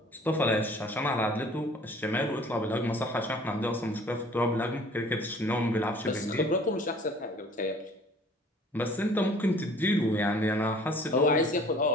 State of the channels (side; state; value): both; normal; correlation 0.51